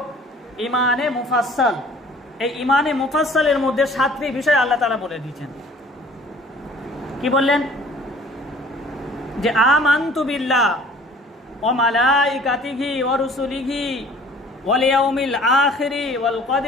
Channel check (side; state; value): both; normal; correlation 0.51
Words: ঈমানে মুফাসসাল। এই ঈমানে মুফাসসালের মধ্যে 7টি বিষয় আল্লাহ তাআলা বলে দিয়েছেন। কি বললেন? যে আমানতু বিল্লাহ ওয়া মালাইকাতিহি ওয়া রুসুলিহি ওয়াল ইয়াউমিল আখিরি ওয়াল